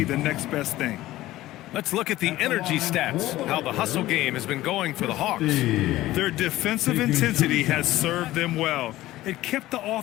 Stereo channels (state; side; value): quieter; right; 16.1 dB